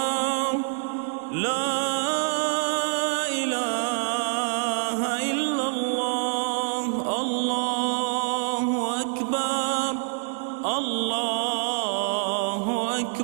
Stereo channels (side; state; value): left; silent; 56 dB below the other